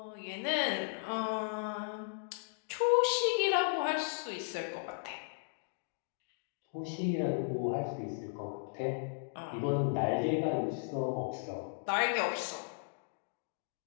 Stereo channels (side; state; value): right; silent; digital silence